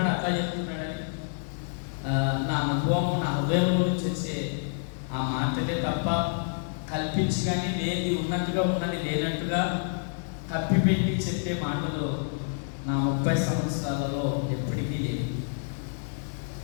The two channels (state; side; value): silent; right; digital silence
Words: అట్లా చెబుతున్నాడని. నా అనుభవం, నా హృదయంలో నుంచి వచ్చే ఆ మాటలే తప్ప కల్పించి కానీ లేని ఉన్నట్టుగా ఉన్నది లేనట్టుగా కప్పిపెట్టి చెప్పే మాటలు నా 30 సంవత్సరాలలో ఎప్పటికీ లేదు.